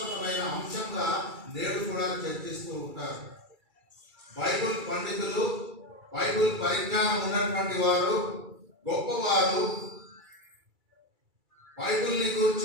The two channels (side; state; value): left; late; 2.3 ms